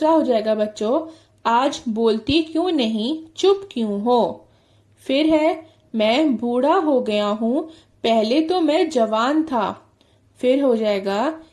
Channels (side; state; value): both; identical; correlation 1.00